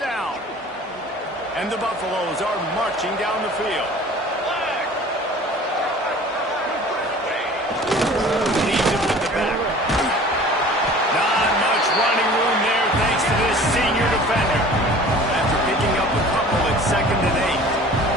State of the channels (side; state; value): both; normal; correlation 0.45